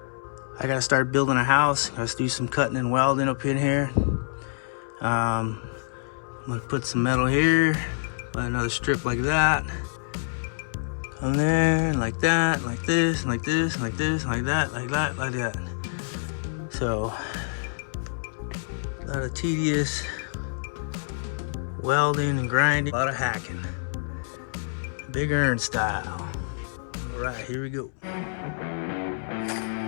I gotta start building a house. Let's do some cutting and welding up in here. I'm gonna put some metal here, let another strip like that. Come there, and like that, like this, like this, like this, like that, like that, like that. So, a lot of tedious welding and grinding, a lot of hacking. Big Earn style. All right, here we go.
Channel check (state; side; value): silent; right; 60 dB below the other